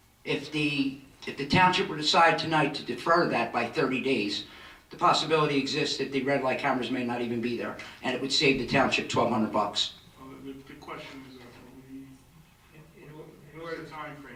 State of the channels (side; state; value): both; identical; correlation 1.00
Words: If the if the township were to decide tonight to defer that by 30 days, the possibility exists that the red light cameras may not even be there, and it would save the township $1,200. Well, the question is, what's the